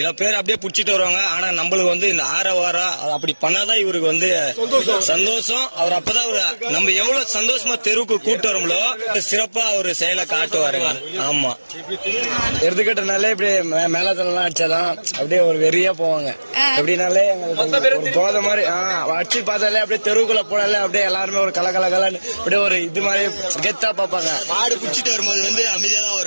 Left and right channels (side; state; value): both; inverted; correlation -1.00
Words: பேர் அப்படியே புடிச்சிட்டு வருவாங்க. ஆனா நம்மளுக்கு வந்து இந்த வாரம் அப்படி பண்ணாதான் இவருக்கு வந்து சந்தோஷம். அவர் அப்பதான் நம்ம எவ்வளவு சந்தோஷமா தெருவுக்கு கூட்டு வரோம்லோ சிறப்பா அவரு செயலை காட்டுவாருங்க. ஆமா, எருதுக்கட்டுனாலே இப்படி மேலத்தெல்லாம் அடிச்சாதான் அப்படியே ஒரு வெறியா போவாங்க. எப்படினாலே எங்களுக்கு போத மாதிரி அடிச்சு பார்த்தாலே அப்படியே தெருவுக்குள்ள போனாலே அப்படியே எல்லாருமே ஒரு கலகலன்னு அப்படியே ஒரு இது மாதிரி கெத்தா பார்ப்பாங்க. மாடு குடிச்சிட்டு வரும்போது வந்து அமைதியா தான்